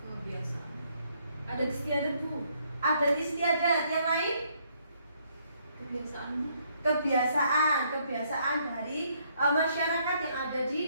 Kebiasaan. Ada istiadat Bu. Ada istiadat, yang lain? Kebiasaan dari masyarakat yang ada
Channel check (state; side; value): inverted; both; correlation -0.69